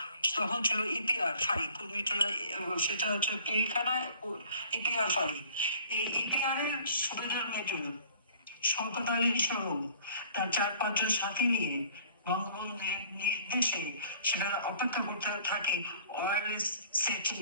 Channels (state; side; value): inverted; both; correlation -0.52